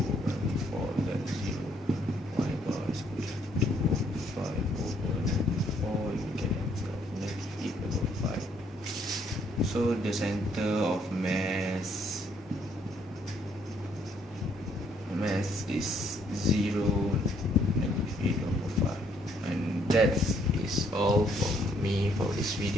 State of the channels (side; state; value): both; normal; correlation 0.68